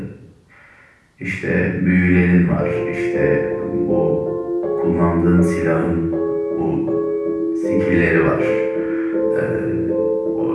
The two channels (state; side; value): identical; both; correlation 1.00